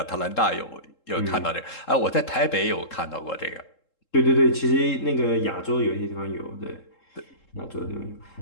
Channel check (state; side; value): late; right; 3.7 ms